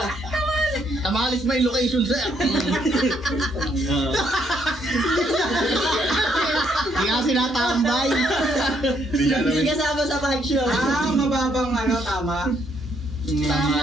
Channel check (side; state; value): both; normal; correlation 0.72